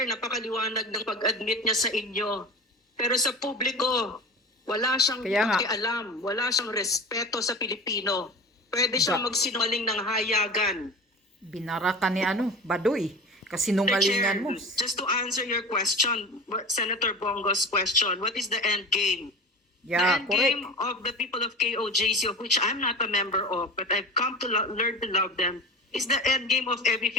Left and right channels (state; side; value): normal; both; correlation 0.33